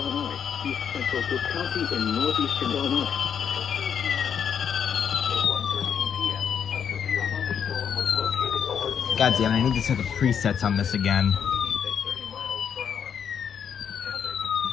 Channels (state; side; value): quieter; right; 7.8 dB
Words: East central Cook County in northeastern Illinois. God damn it, I need to set the presets on this again.